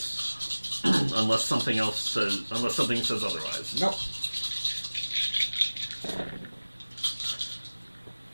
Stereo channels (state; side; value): inverted; both; correlation -1.00